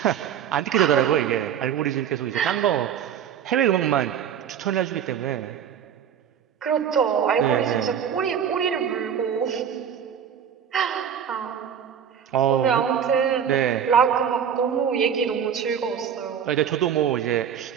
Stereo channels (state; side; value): quieter; left; 8.4 dB